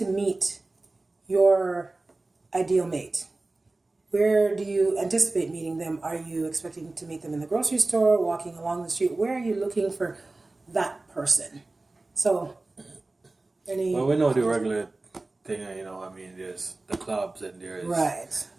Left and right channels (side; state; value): left; quieter; 3.1 dB